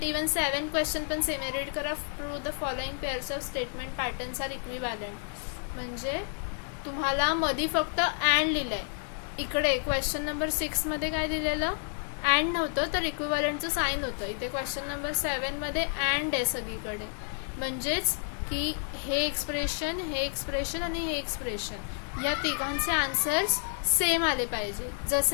even 7 question पण सेम. रीड करा, through the following pairs of statement patterns are equivalent. म्हणजे तुम्हाला मधी फक्त अँड लिहिलंय. इकडे क्वेश्चन नंबर 6मध्ये काय दिलेलं, अँड नव्हतं तर इक्विव्हॅलंटचं साईन होतं. इथे क्वेश्चन नंबर 7मध्ये अँड आहे सगळीकडे. म्हणजेच की हे एक्सप्रेशन, हे एक्सप्रेशन आणि हे एक्सप्रेशन या तिघांचे आन्सर्स सेम आले पाहिजे.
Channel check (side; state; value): right; silent; 58 dB below the other